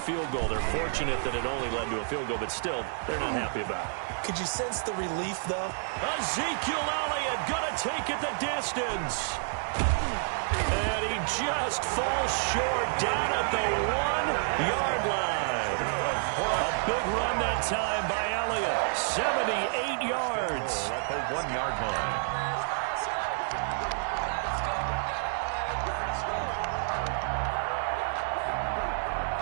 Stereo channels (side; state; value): left; silent; 58 dB below the other